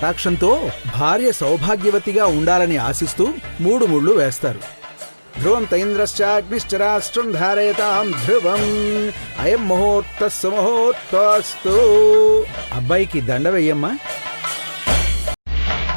భార్య సౌభాగ్యవతిగా ఉండాలని ఆశిస్తూ 3 ముళ్ళు వేస్తారు. ధ్రువం తైంద్రశ్చాగ్నిశ్చరాష్ట్రం ధారయతాం ధ్రువం అయం ముహూర్త సుముహూర్తస్తు. అబ్బాయికి దండ వెయ్యమ్మా.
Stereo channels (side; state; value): both; inverted; correlation -1.00